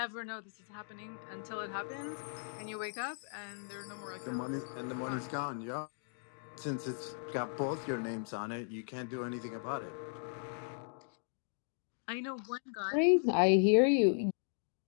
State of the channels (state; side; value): silent; right; digital silence